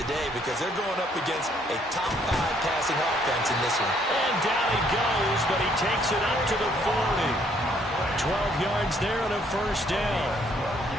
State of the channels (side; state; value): both; normal; correlation 0.66